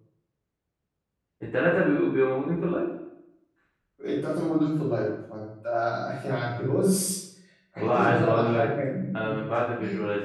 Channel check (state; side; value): identical; both; correlation 1.00